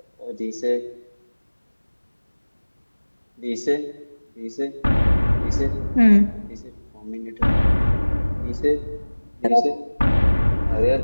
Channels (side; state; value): both; inverted; correlation -1.00